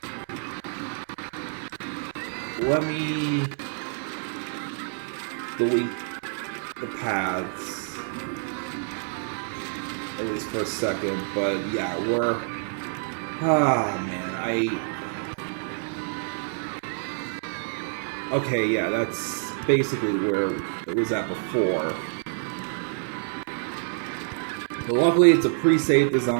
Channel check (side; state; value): left; silent; digital silence